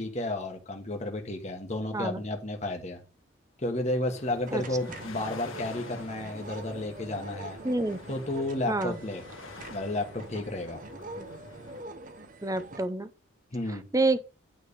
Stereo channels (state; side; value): normal; both; correlation 0.48